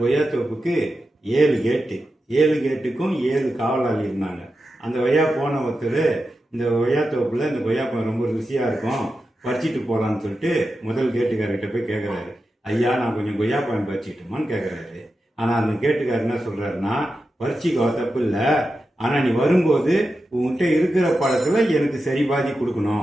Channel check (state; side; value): normal; both; correlation 0.90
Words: கொய்யாத்தோப்புக்கு 7 கேட்டு, 7 கேட்டுக்கும் 7 காவலாளி இருந்தாங்க. அந்த கொய்யா போன ஒருத்தர் இந்த கொய்யாத்தோப்புல இந்த கொய்யாப்பழம் ரொம்ப ருசியா இருக்கும், பறிச்சிட்டு போகலான்னு சொல்லிட்டு முதல் கேட்டுக்காரர்கிட்ட போய் கேட்குறாரு. ஐயா, நான் கொஞ்சம் கொய்யாப்பழம் பறிச்சிட்டுமான்னு கேட்குறாரு. ஆனால் அந்த கேட்டுக்காரர் என்ன சொல்றாருன்னா, பறிச்சிக்கோ, தப்பு இல்லை, ஆனால் நீ வரும்போது உங்ககிட்ட இருக்கிற பழத்தில் எனக்கு சரி பாதி